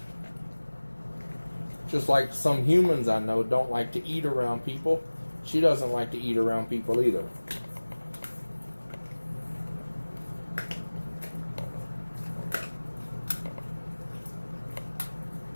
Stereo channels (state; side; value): inverted; both; correlation -1.00